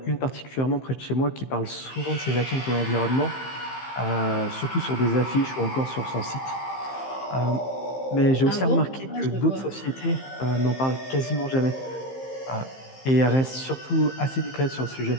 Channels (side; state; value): right; late; 15 ms